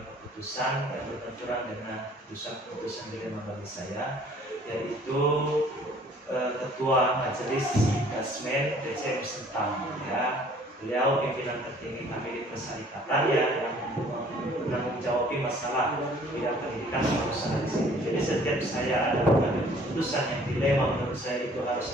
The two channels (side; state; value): both; normal; correlation 0.55